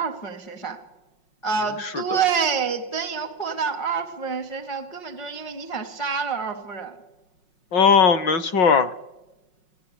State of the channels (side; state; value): right; late; 5.5 ms